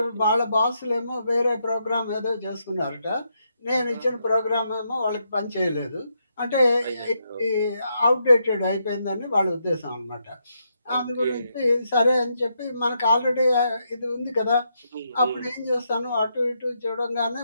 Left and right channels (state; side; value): inverted; both; correlation -0.80